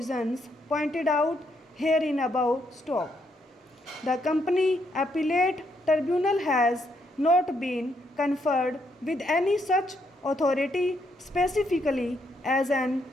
pointed out herein above. Stop. The company appellate tribunal has not been conferred with any such authority specifically as an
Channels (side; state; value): both; normal; correlation 0.75